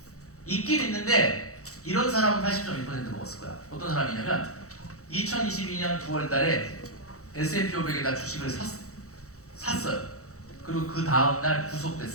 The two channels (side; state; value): right; late; 0.65 ms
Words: 있긴 있는데 이런 사람은 80.1% 먹었을 거야. 어떤 사람이냐면 2022년 9월 달에 S&P 500에다 주식을 샀어요. 그리고 그 다음날